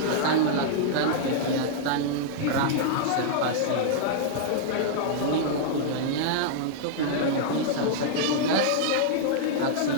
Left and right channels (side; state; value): both; different; correlation -0.02